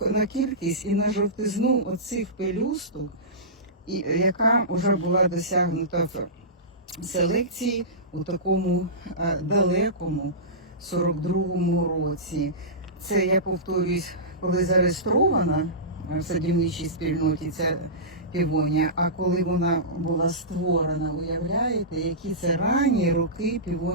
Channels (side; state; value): both; normal; correlation -0.19